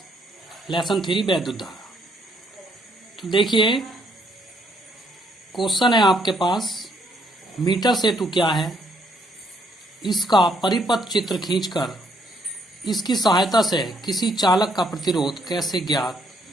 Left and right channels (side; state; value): both; normal; correlation 0.70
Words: लेसन 3 वैद्युत धारा। तो देखिए क्वेश्चन है आपके पास, मीटर सेतु क्या है, इसका परिपथ चित्र खींचकर इसकी सहायता से किसी चालक का प्रतिरोध कैसे ज्ञात